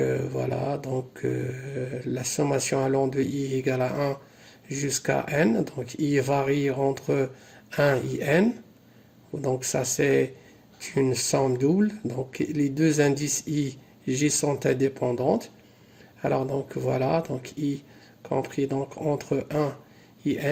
donc la sommation allant de i égale à 1 jusqu'à n, donc i varie entre 1 et n, donc ça c'est une somme double, donc les deux indices i, j sont indépendantes. Alors donc voilà, donc i compris donc entre 1 et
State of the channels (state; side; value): identical; both; correlation 1.00